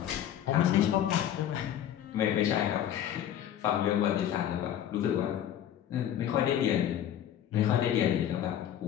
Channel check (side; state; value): right; quieter; 10.7 dB